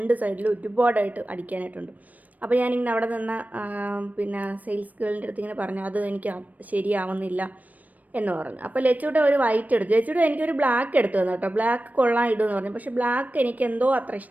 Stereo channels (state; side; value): late; left; 0.075 ms